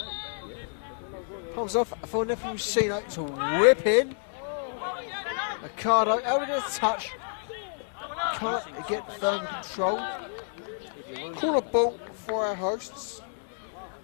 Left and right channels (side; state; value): right; silent; digital silence